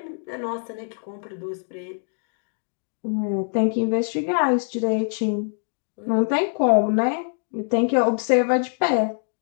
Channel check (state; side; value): silent; right; digital silence